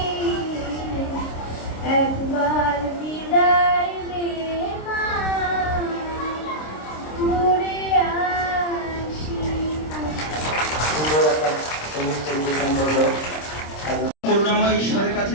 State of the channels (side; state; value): right; late; 26 ms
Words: একবার বিদায় নে মা, ঘুরে আসি। সুন্দর একটা সবুজ পরিবেশন করলো। করুণাময় ঈশ্বরের কাছে